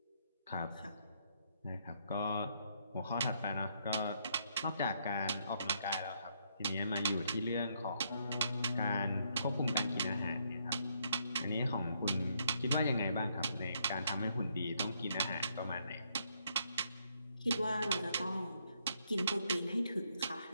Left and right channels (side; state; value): both; inverted; correlation -0.73